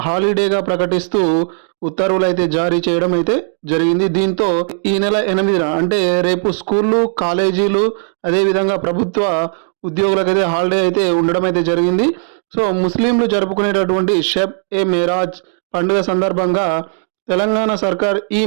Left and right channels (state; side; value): silent; left; digital silence